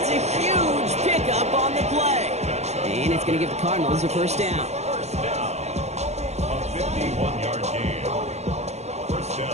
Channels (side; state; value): left; late; 0.32 ms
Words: a huge pickup on the play. And it's going to give the Cardinals a first down. First down. A 51-yard gain. First